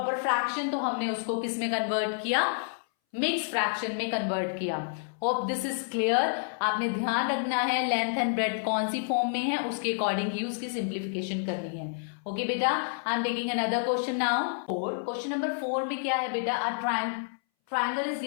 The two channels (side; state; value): right; silent; 58 dB below the other